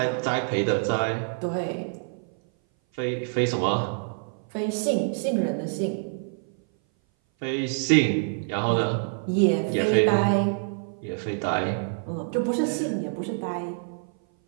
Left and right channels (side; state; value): left; silent; 58 dB below the other